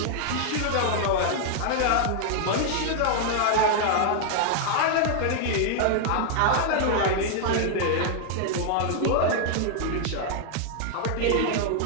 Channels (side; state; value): both; different; correlation -0.01